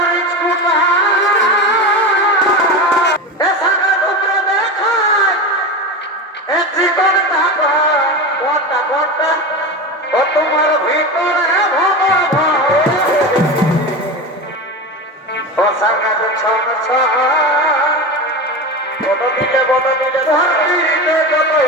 কুটা এসানা টুকরা দেখায় এ চিকন টাকা ওটা ঘন্টা ও তোমার ভিতরে ও সারকা তো ছন ছন বড় দিলে ধরতে যতই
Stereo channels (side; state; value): both; normal; correlation 0.24